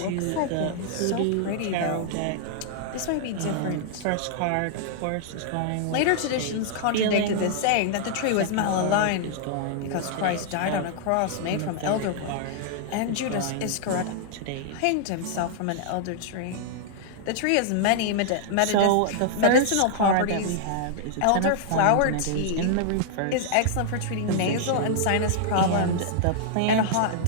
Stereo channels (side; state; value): both; different; correlation -0.01